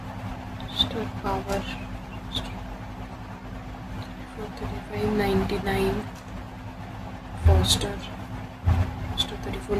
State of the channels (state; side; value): identical; both; correlation 1.00